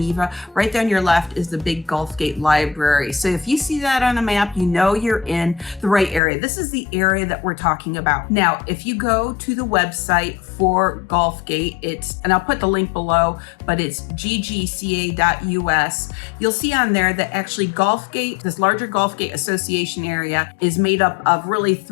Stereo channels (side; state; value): right; drops out; at 6.2 s